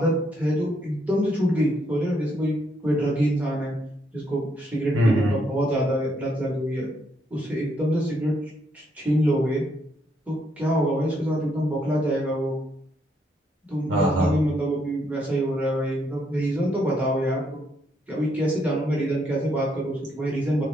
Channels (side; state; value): both; normal; correlation 0.74